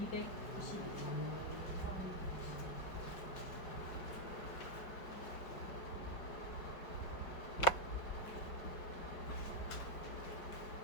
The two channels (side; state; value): right; late; 5.1 ms